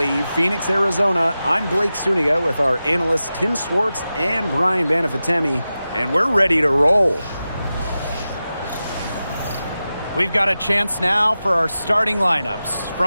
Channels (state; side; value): inverted; both; correlation -0.93